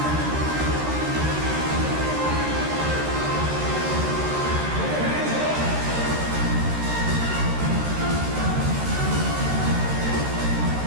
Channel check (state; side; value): late; left; 13 ms